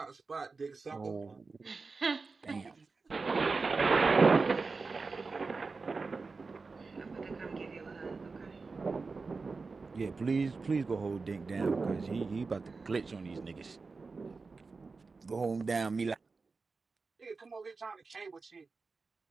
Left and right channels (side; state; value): left; quieter; 4.2 dB